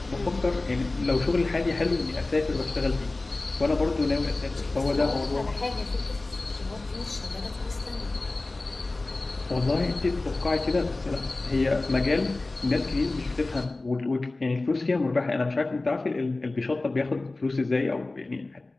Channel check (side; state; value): right; quieter; 3.1 dB